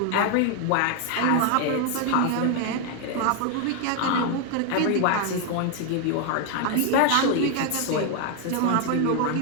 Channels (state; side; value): different; both; correlation 0.01